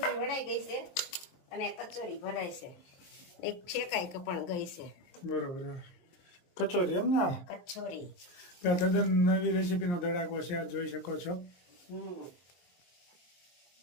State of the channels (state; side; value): late; right; 23 ms